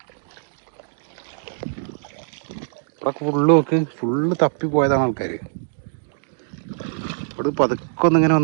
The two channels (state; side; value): silent; left; digital silence